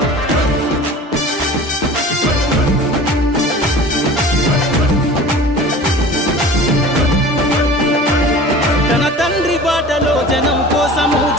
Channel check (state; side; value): normal; both; correlation 0.40